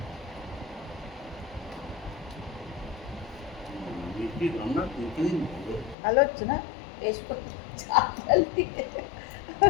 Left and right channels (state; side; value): drops out; right; at 6.0 s